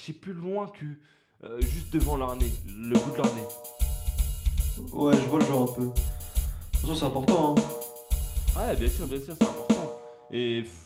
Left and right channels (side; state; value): both; identical; correlation 1.00